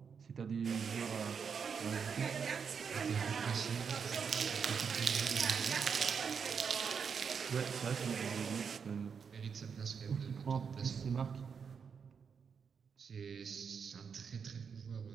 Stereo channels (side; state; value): left; quieter; 6.4 dB